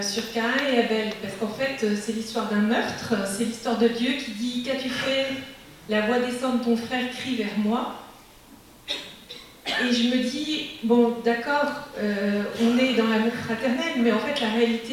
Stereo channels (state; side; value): identical; both; correlation 1.00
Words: sur Caïn et Abel, parce qu'en fait, c'est l'histoire d'un meurtre, c'est l'histoire de Dieu qui dit « Qu'as-tu fait? La voix descend de ton frère crie vers moi. » Et je me dis, bon, d'accord, on est dans l'amour fraternel, mais en fait, la